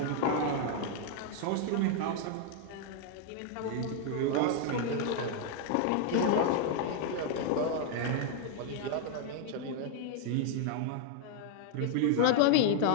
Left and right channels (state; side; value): different; both; correlation 0.00